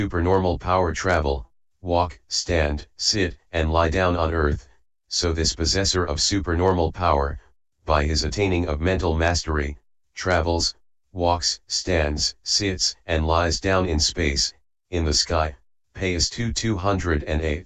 power travel, walk, stand, sit, and lie down on earth, so this possessor of supernormal power, by his attaining of mental mastery, travels, walks, stands, sits, and lies down in space, in the sky, Path 208.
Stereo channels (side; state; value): both; identical; correlation 1.00